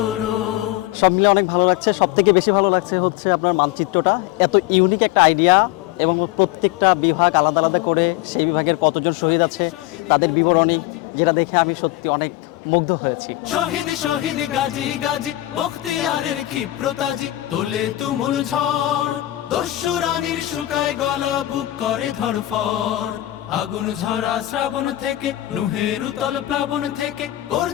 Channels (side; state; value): right; quieter; 16.2 dB